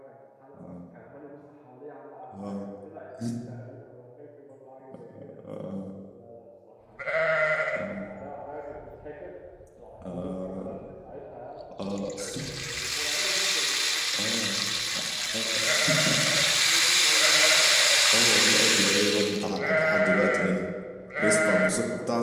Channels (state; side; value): identical; both; correlation 1.00